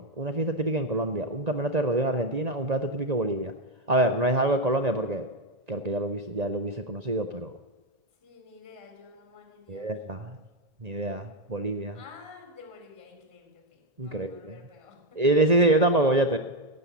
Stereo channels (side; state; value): left; late; 1.9 ms